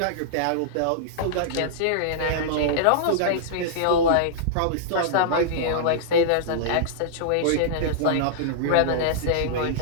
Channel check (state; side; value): different; both; correlation -0.02